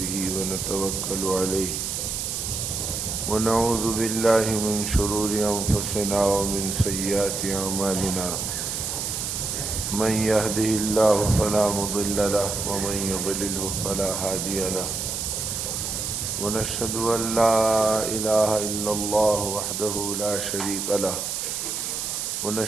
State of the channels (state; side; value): noise; right; hiss, 3 dB below the sound